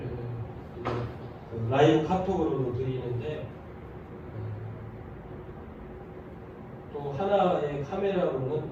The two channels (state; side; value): identical; both; correlation 1.00